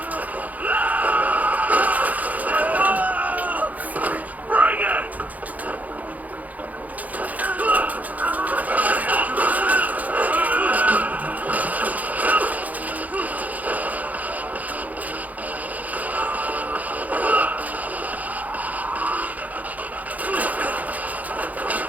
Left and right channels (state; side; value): late; left; 0.077 ms